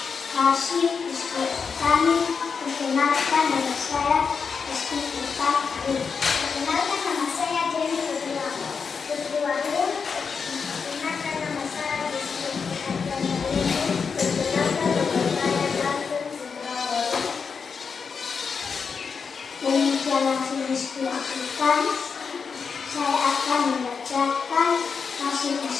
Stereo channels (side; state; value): right; quieter; 5.7 dB